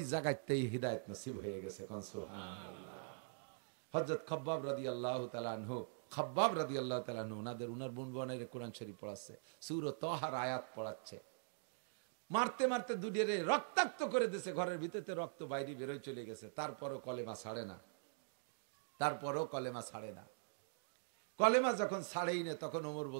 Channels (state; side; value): silent; left; digital silence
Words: জায়গাতেই হিদায়াত নসিব হয়ে গেছে। হযরত খাব্বাব রাদিয়াল্লাহু তাআলা আনহু, খাব্বাব রাদিয়াল্লাহু তাআলা আনহু ওনার বোন বনের কোরআন শরীফ পড়াচ্ছে, সূরা তাহার আয়াত পড়াচ্ছে, মারতে মারতে দুডিরে রক্তাক্ত করে দিয়েছে, ঘরের ভিতরে রক্ত বাইরে বেরোয় চলে গেছে, তারপরও কলেমা ছাড়ে না, তারপরও কলেমা ছাড়ে না। কলেমা যখন ছাড়েই না, তখন ওমর